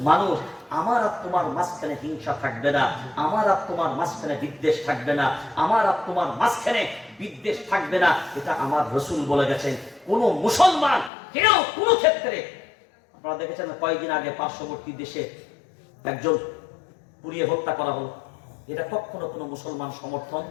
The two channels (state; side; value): drops out; right; at 11.1 s